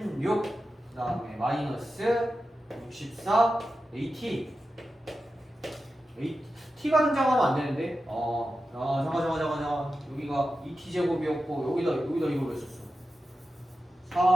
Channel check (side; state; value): both; normal; correlation 0.92